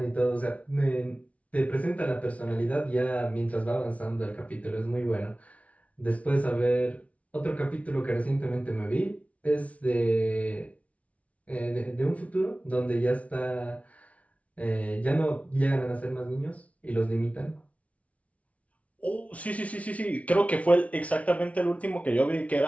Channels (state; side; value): late; right; 0.066 ms